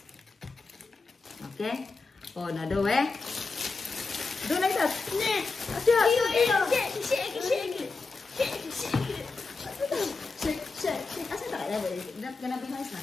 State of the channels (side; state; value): right; quieter; 4.1 dB